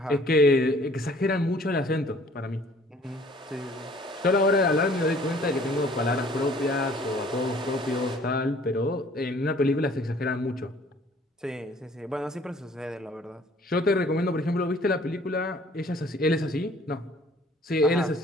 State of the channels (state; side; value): normal; both; correlation 0.55